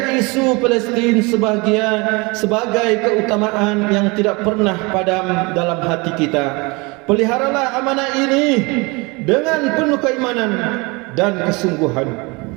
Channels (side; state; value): left; quieter; 26.9 dB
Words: isu Palestin sebagai keutamaan yang tidak pernah padam dalam hati kita. Peliharalah amanah ini dengan penuh keimanan dan kesungguhan.